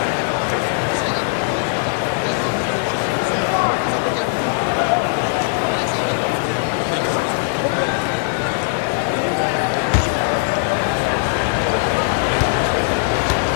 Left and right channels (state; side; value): silent; right; digital silence